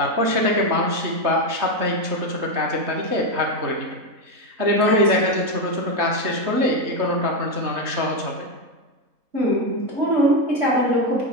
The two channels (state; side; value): late; left; 3.3 ms